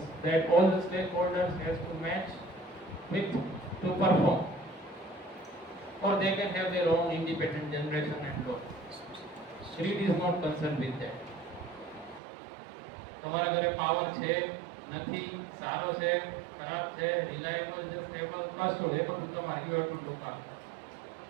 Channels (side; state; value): left; drops out; at 12.2 s